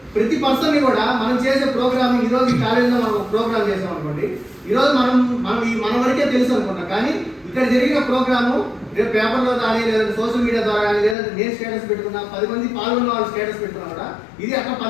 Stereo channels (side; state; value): right; drops out; at 11.2 s